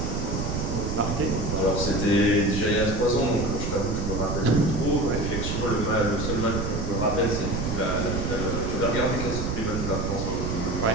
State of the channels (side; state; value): right; noise; rumble, 2 dB below the sound